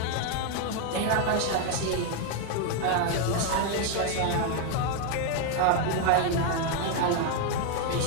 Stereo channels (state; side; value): different; both; correlation 0.00